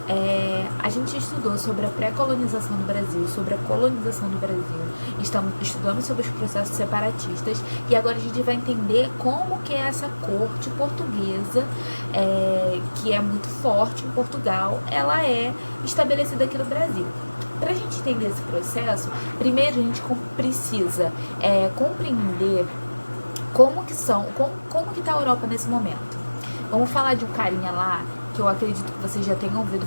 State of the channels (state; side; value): inverted; both; correlation -1.00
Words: A gente estudou sobre a pré-colonização do Brasil, sobre a colonização do Brasil, estamos estudando sobre os processos separatistas e agora a gente vai entender como que é essa corte portuguesa, que é muito forte em Portugal, ela é estabelecida aqui no Brasil. Para a gente entender esse processo, primeiro a gente precisa compreender como que está a Europa nesse momento. Vamos falar de um carinha lá, que eu acredito que vocês já tenham ouvido